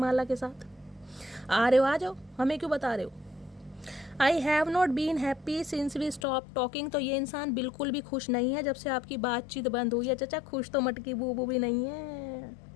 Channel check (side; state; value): right; drops out; at 6.2 s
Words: के साथ। आ रहे हो, आ जाओ, हमें क्यों बता रहे हो। I have not been happy since we stop talking. तो ये इंसान बिल्कुल भी खुश नहीं है जब से आपकी बातचीत बंद हुई है। चचा खुश तो मटकी बूबू भी नहीं है,